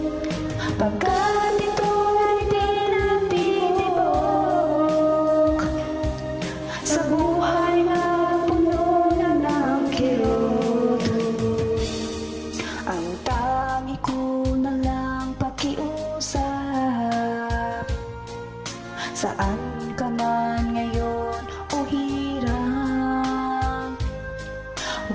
pagkat ito'y tinatibok sa buhay na puno na ng kirot. ang tangi ko na lang pakiusap, saan ka man ngayon o hirap,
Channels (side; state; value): both; identical; correlation 1.00